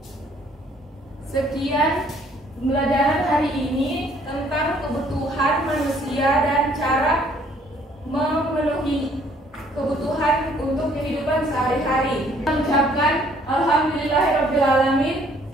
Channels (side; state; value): both; normal; correlation 0.61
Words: Sekian pembelajaran hari ini tentang kebutuhan manusia dan cara memenuhi kebutuhan untuk kehidupan sehari-hari. Kita mengucapkan alhamdulillahirabbil alamin.